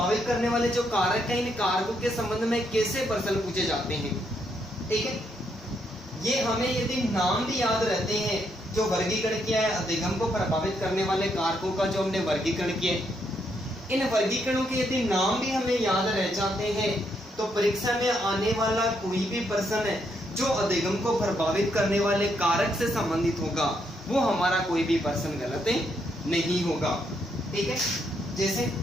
करने वाले जो कारक हैं, इन कारकों के संबंध में कैसे प्रश्न पूछे जाते हैं, ठीक है। ये हमें यदि नाम भी याद रहते हैं, जो वर्गीकरण किया है अधिगम को प्रभावित करने वाले कारकों का जो हमने वर्गीकरण किया, इन वर्गीकरणों के यदि नाम भी हमें याद रह जाते हैं तो परीक्षा में आने वाला कोई भी प्रश्न है जो अधिगम को प्रभावित करने वाले कारक से संबंधित होगा वो हमारा कोई भी प्रश्न गलत नहीं होगा, ठीक है। जैसे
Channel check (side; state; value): both; normal; correlation 0.76